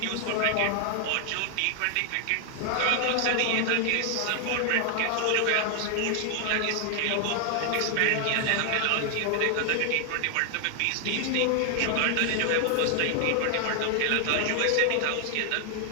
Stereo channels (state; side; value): different; both; correlation 0.00